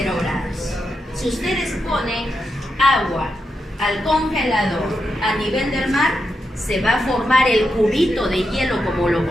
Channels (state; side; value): normal; both; correlation 0.86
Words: grados. Si ustedes ponen agua al congelador a nivel del mar, se va a formar el cubito de hielo como lo